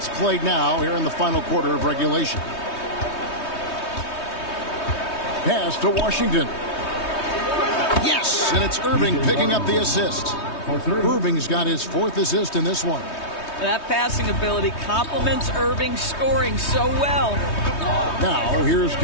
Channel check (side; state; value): right; late; 3.2 ms